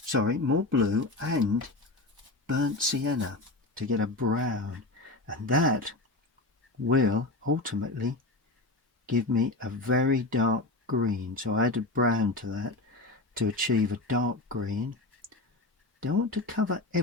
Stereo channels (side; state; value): right; quieter; 3.0 dB